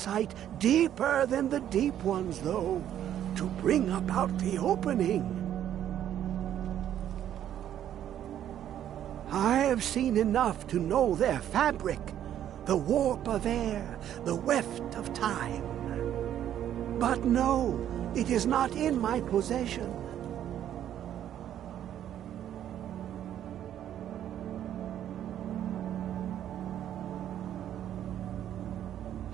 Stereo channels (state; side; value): quieter; left; 10.8 dB